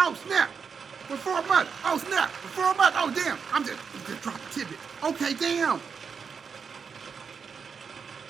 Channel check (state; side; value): quieter; left; 6.0 dB